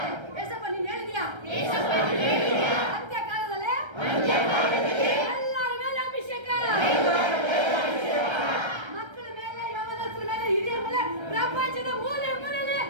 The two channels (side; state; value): left; late; 1.3 ms